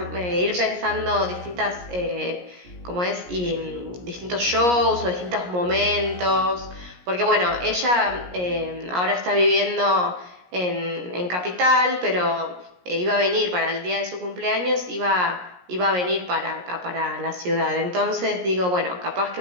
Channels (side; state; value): left; late; 17 ms